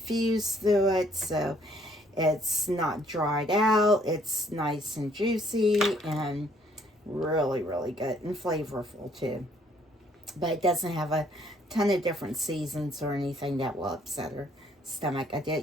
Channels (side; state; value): both; normal; correlation 0.64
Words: through it, so it's not dried out. It's nice and juicy and really, really good and flavorful too. But it doesn't have a ton of different seasons or anything that will upset her stomach. I